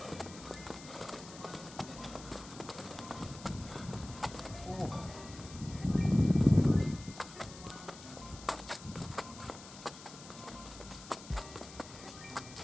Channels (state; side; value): noise; left; hiss, 15 dB below the sound